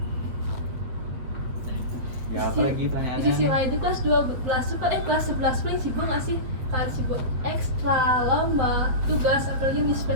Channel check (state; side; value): late; left; 8.2 ms